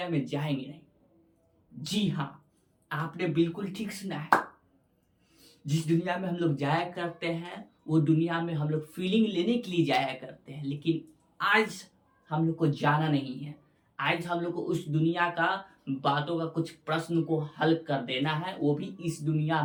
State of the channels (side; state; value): both; identical; correlation 1.00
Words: में जाएंगे नहीं। जी हाँ, आपने बिल्कुल ठीक सुना है। जिस दुनिया में हम लोग जाया करते हैं वो दुनिया में हम लोग फीलिंग लेने के लिए जाया करते हैं, लेकिन आज हम लोग को जाना नहीं है। आज हम लोग को उस दुनिया का बातों का कुछ प्रश्न को हल कर देना है, वो भी इस दुनिया